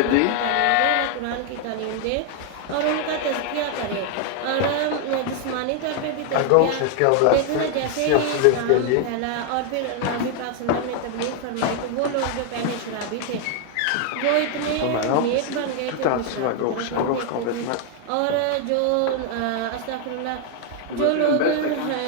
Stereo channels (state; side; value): different; both; correlation 0.00